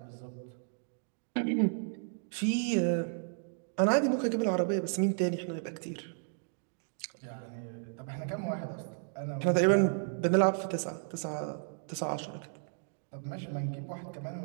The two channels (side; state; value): left; silent; digital silence